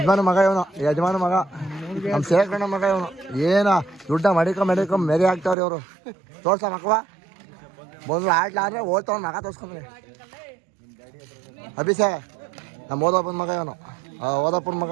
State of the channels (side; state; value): left; drops out; at 5.6 s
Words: ಮಗ ಇವನು. ನಮ್ಮ ಸೇರ್ಕಣ್ಣ ಮಗ ಇವನು. ಏನ ದುಡ್ಡ ಮಡಿಕ ಮೆರಿ ಆಗ್ತಾವ್ರಿ ಇವರು. ತೋರ್ಸ ಮಕ್ಕವ ಬಂದು ಆಡ್ಲಾದ್ರೆ ಓದ್ತಾವ ಮಗ ತೋರ್ಸ್ಕೊಂಡ್ರಿ. ಅಭಿಷೇ ನಮ್ಮ ಓದಪ್ಪನ ಮಗ ಇವನು. ಓದಪ್ಪನ ಮಗ